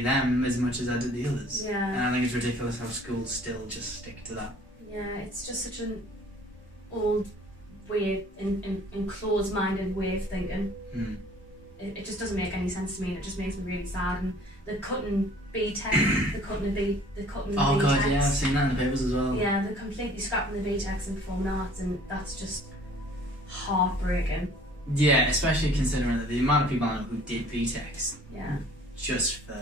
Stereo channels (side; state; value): both; normal; correlation 0.53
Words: them as much as I did the others. Yeah. And I think it's ridiculous how schools still just stick to that. Yeah, it's just such an old way, in closed-minded way of thinking. It just doesn't make any sense to me, and it just makes me really sad. And they're cutting B-Tech, they're cutting the Oh B-Techs. god, yeah, I've seen that in the papers as well. Yeah, they're completely scrapping the B-Techs in performing arts, and that's just heartbreaking. Yeah, especially considering that the amount of people I know who did B-Techs, just for